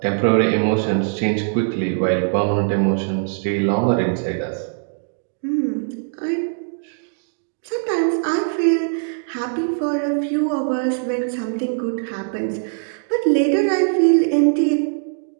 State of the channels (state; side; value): silent; left; digital silence